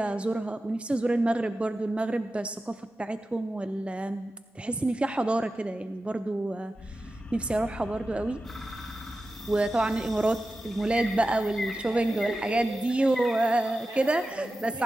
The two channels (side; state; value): both; normal; correlation 0.93